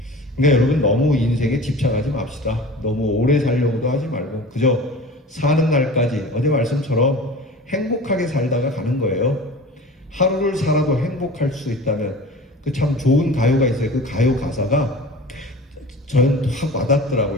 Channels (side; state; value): both; normal; correlation 0.38